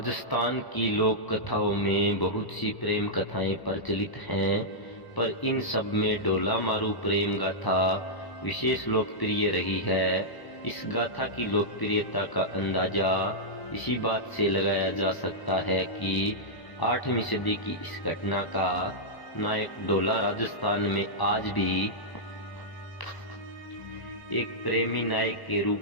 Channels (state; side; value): late; right; 1.0 ms